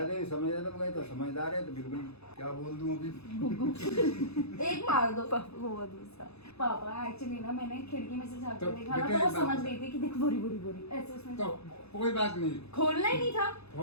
तो समझ रहा था, तो समझदार है तो बिल्कुल क्या बोल दूं अभी। एक मार दो। वो दूसरा पापा एक्चुअली ना मैंने खिड़की में से झाँक तो कर देखा ना, बेटे तो वो बात- समझ गई थी कि देख बोरी बोरी बोरी ऐसे उसमें। तो कोई बात नहीं, खोलना ही नहीं था।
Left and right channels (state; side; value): late; right; 0.79 ms